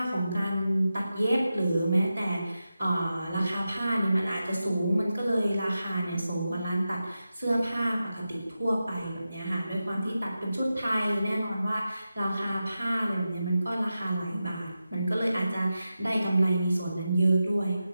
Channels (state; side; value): inverted; both; correlation -0.91